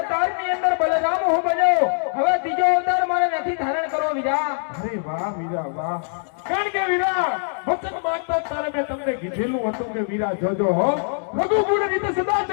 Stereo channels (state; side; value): silent; right; digital silence